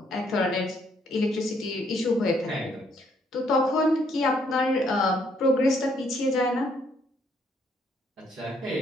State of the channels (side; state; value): both; normal; correlation 0.69